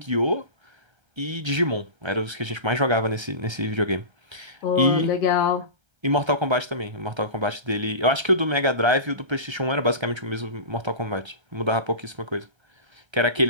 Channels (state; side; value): late; left; 1.3 ms